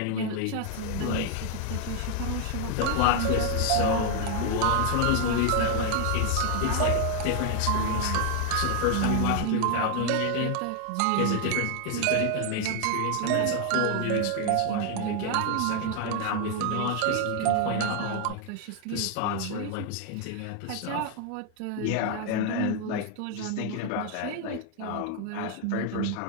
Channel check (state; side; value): different; both; correlation 0.01